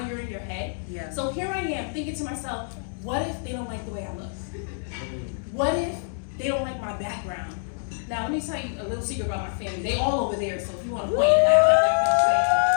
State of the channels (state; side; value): silent; right; digital silence